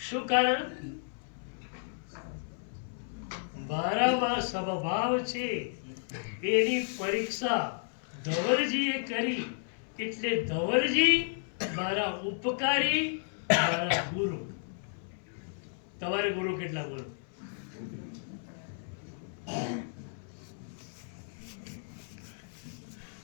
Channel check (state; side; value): silent; right; 56 dB below the other